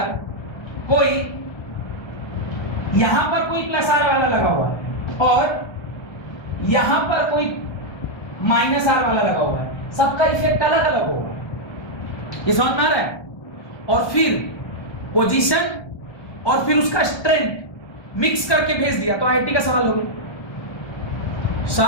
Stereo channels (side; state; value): right; late; 1.3 ms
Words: कोई +R वाला लगा हुआ है, और यहां पर कोई -R वाला लगा हुआ है। सबका इफेक्ट अलग अलग होगा, ये समझ में आ रहा है। और फिर पोजीशन और फिर उसका स्ट्रेंथ मिक्स करके भेज दिया तो IIT का सवाल हो गया।